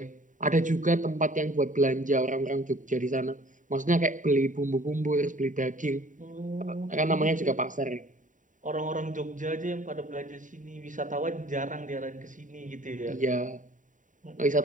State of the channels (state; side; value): late; left; 0.37 ms